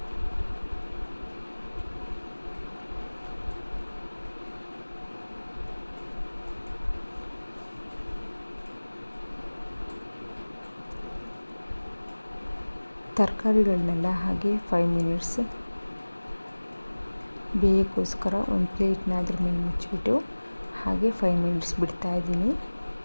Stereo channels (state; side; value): inverted; both; correlation -1.00